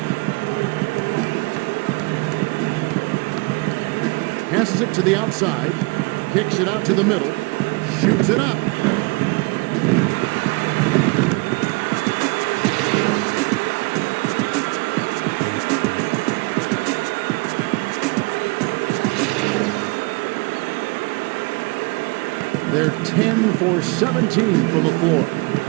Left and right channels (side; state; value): left; quieter; 28.4 dB